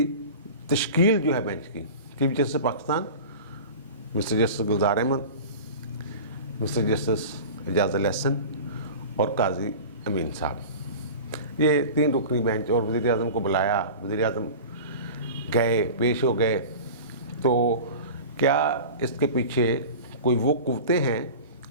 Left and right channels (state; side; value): inverted; both; correlation -0.35